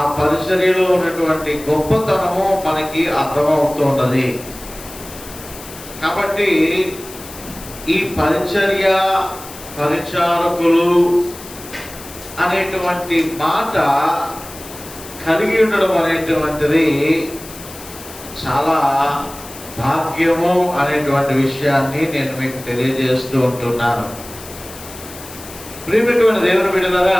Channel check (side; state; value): left; noise; hiss, 16 dB below the sound